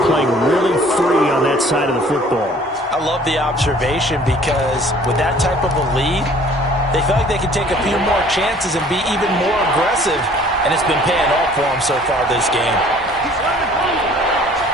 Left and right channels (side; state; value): both; normal; correlation 0.53